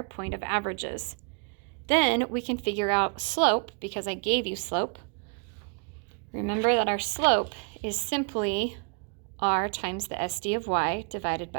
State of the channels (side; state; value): left; quieter; 37.4 dB